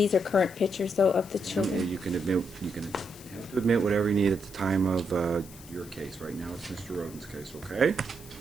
are current pictures though of the children. You can admit, you can have to admit whatever you need at the time of your case. Right now, it's Mr. Roden's case, okay?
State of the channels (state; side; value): noise; left; hiss, 19 dB below the sound